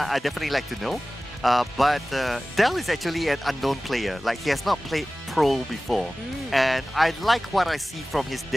definitely like to know. But Del is actually an unknown player. Like, he has not played pro before. And I like what I see from his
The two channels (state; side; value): normal; both; correlation 0.97